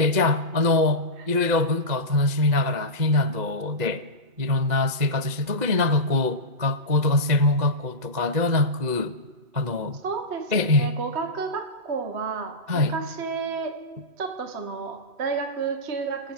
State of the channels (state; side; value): late; left; 2.0 ms